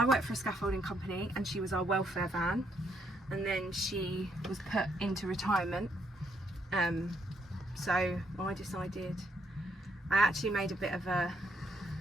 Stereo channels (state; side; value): normal; both; correlation 0.74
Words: worked for a scaffolding company and she was our welfare van, and then she was put into retirement. So I decided, I actually made a bit of a,